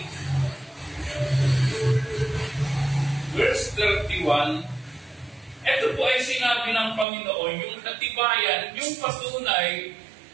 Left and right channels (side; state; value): left; drops out; at 7.1 s